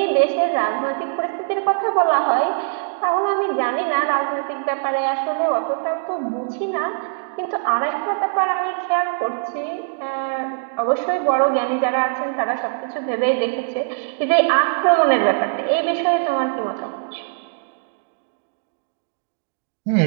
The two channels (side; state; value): left; silent; digital silence